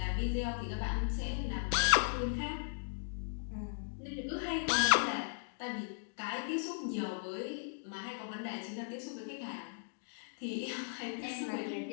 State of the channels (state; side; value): silent; right; digital silence